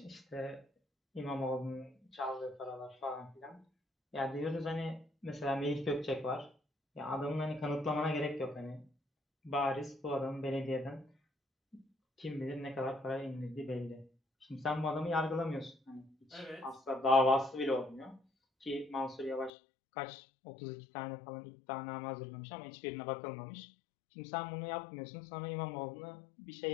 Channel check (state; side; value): drops out; right; at 19.5 s